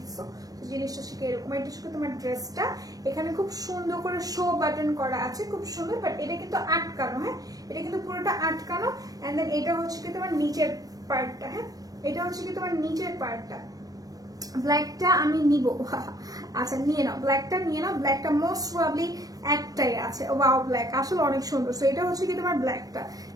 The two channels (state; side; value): late; left; 0.18 ms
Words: জিনিসটা শিখে এরকম। এটা শিখে তোমার ড্রেসটা এখানে খুব সুন্দর করে শো বাটন করা আছে, খুব সুন্দর, বাট এটা কিন্তু আটকানো, হ্যাঁ এটা কিন্তু পুরোটা আটকানো। এন্ড দেন এটা হচ্ছে কি তোমার নিচের পার্টটা, হ্যাঁ এটা হচ্ছে কি তোমার নিচের পার্টটা। ব্ল্যাকটা আমি নিব, আচ্ছা নিয়ে নাও, ব্ল্যাকটা নিয়ে নাও। ব্ল্যাকটা মোস্ট প্রবাবলি একটাই আছে। ওয়াও, ব্ল্যাক আসলে অনেক সুন্দর। সো এটা হচ্ছে কি তোমার ব্ল্যাকটা,